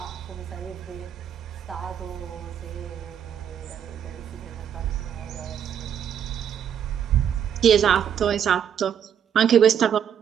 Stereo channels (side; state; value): left; quieter; 8.8 dB